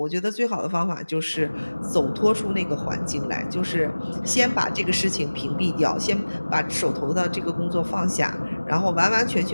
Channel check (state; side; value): inverted; both; correlation -1.00